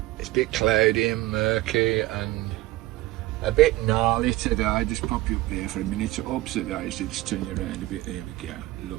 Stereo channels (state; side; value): quieter; left; 17.6 dB